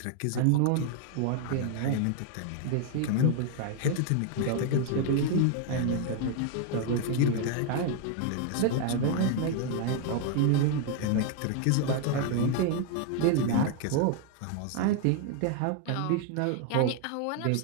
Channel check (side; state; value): both; different; correlation 0.00